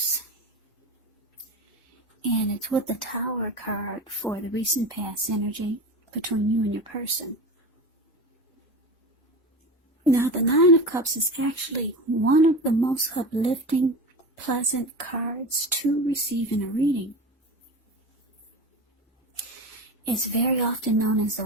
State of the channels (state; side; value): normal; both; correlation 0.28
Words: and it's with the Tower card for the recent past energy between you and your person. Now the Nine of Cups is actually one of the most uplifting, pleasant cards to receive in a reading. It's very often known as